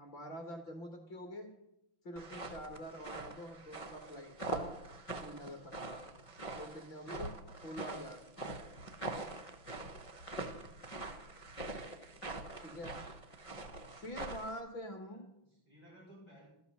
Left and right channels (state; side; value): late; right; 5.9 ms